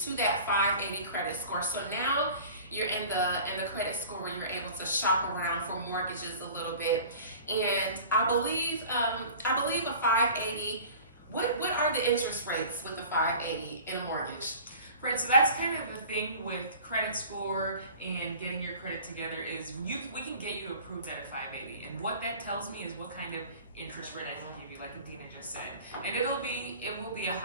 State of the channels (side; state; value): both; inverted; correlation -0.42